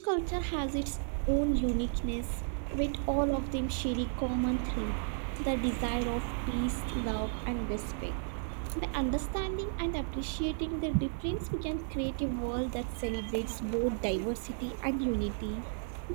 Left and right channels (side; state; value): left; silent; digital silence